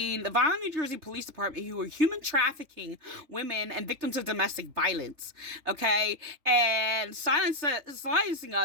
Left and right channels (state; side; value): late; left; 3.3 ms